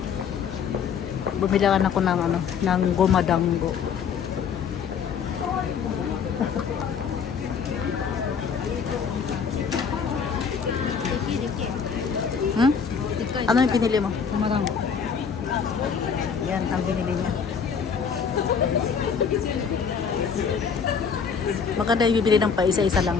Bumilangan ako ng ano, ng gumadanggo. Hmm? Ano yung pinili mo? Umarang. Yan, ang binili niya. Maganda yung bibili ng pa isa-isa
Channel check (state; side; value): quieter; right; 6.5 dB